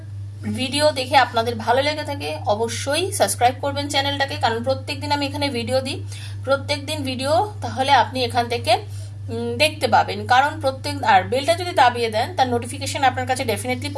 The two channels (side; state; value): both; identical; correlation 1.00